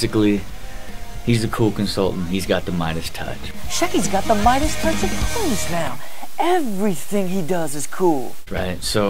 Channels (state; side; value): identical; both; correlation 1.00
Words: he's a cool consultant. He's got the Midas touch. Shecky's got the Midas touch of coolness now. Everything he does is cool. Right,